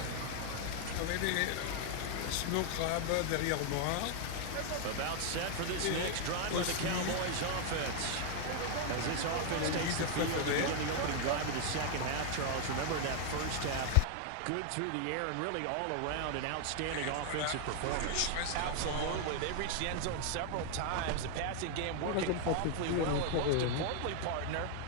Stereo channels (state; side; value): different; both; correlation 0.00